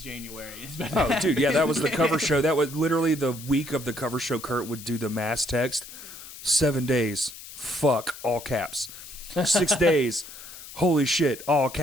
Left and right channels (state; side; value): noise; left; hiss, 15 dB below the sound